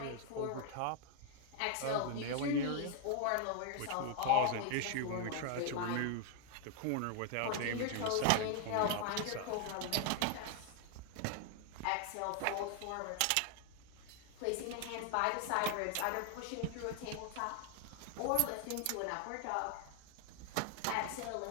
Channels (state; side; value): different; both; correlation 0.00